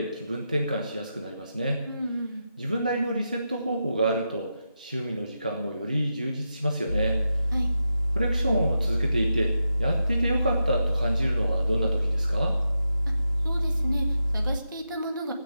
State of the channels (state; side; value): inverted; both; correlation -0.87